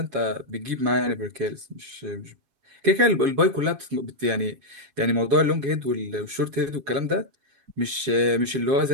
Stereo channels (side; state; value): left; late; 7.3 ms